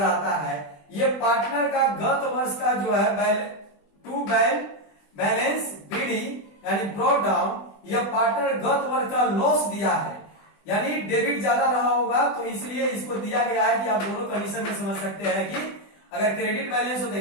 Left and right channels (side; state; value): right; late; 20 ms